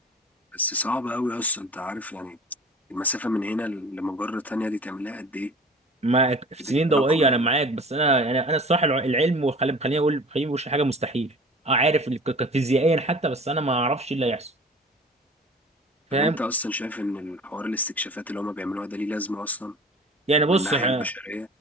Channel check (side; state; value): both; normal; correlation 0.43